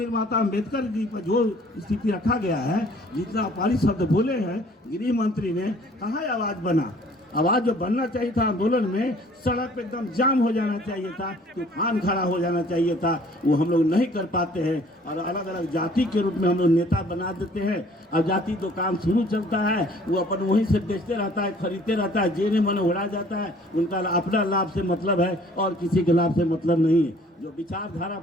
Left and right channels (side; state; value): both; normal; correlation 0.56